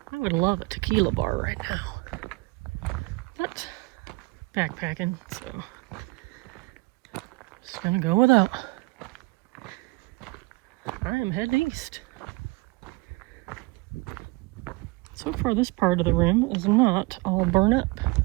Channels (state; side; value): quieter; left; 23.7 dB